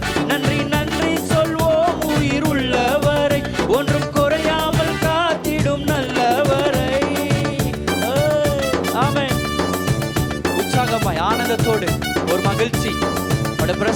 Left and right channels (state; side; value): identical; both; correlation 1.00